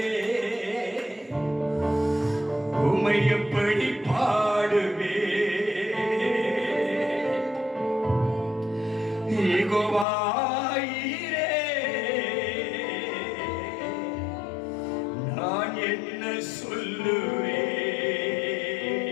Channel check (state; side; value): drops out; right; at 10.1 s